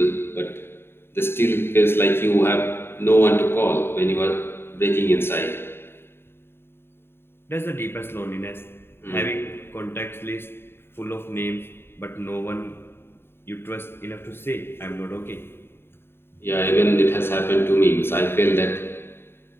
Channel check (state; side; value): late; right; 0.11 ms